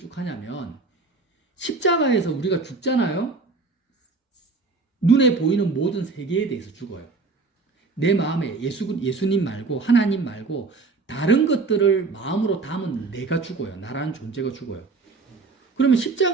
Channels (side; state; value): left; quieter; 4.0 dB